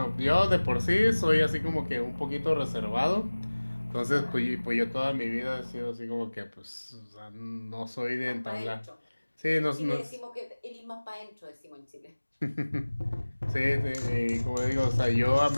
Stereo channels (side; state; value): both; inverted; correlation -1.00